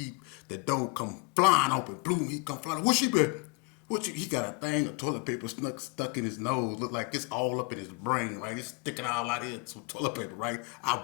The door come flying open, boom, he come flying. What she been? He got a thing of toilet paper stuck in his nose. Look like it's all up in his brain, right? It's sticking all out here, some toilet paper, right? I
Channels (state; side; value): quieter; right; 30.5 dB